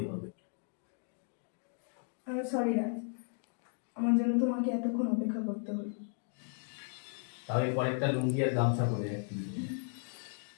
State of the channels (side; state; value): right; silent; 54 dB below the other